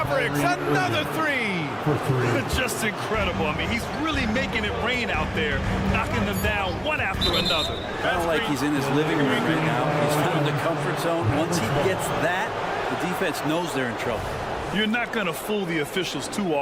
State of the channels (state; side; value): identical; both; correlation 1.00